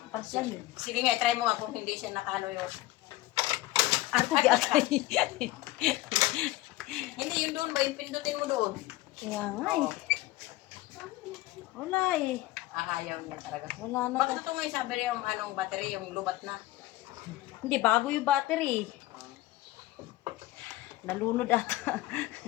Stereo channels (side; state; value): right; quieter; 17.6 dB